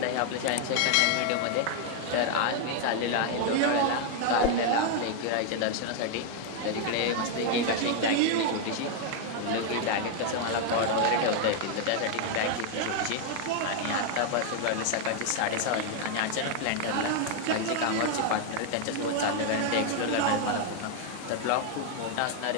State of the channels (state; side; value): different; both; correlation 0.00